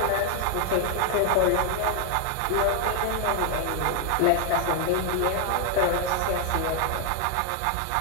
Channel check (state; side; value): different; both; correlation 0.00